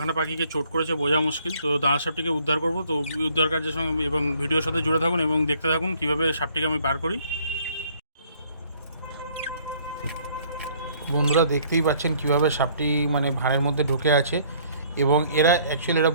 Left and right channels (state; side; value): inverted; both; correlation -0.61